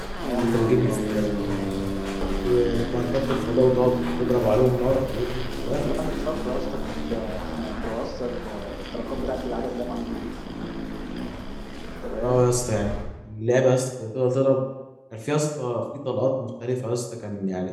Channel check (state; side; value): identical; both; correlation 1.00